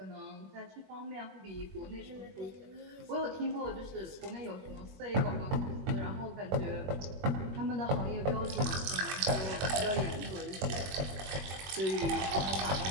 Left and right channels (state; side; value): late; left; 21 ms